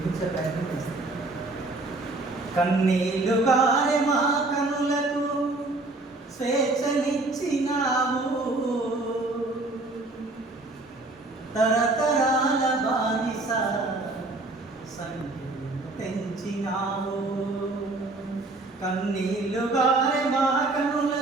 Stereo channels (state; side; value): quieter; left; 3.1 dB